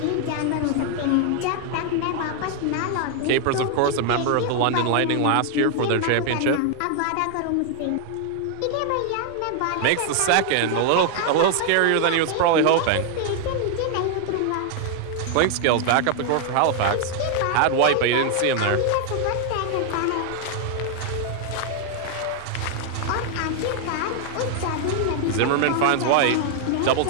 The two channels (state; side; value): different; both; correlation 0.00